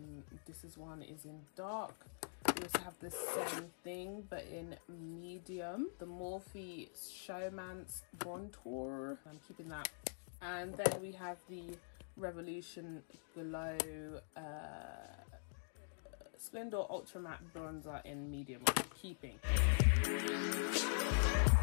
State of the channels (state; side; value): silent; right; digital silence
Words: this one is in dark. We also have the same thing but in medium, the Morphe Showman's Contour. I'm keeping that. And then we have the Revolution Glow Splendor Ultra Matte Bronzer in medium, which I'm keeping.